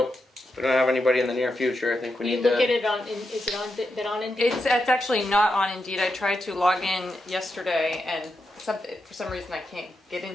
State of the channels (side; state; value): both; normal; correlation 0.86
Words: If we don't have anybody in the near future, I think we You need look to. at it on, is it on, been on Indeed? It's actually not on Indeed. I tried to log in yesterday and for some reason I can't get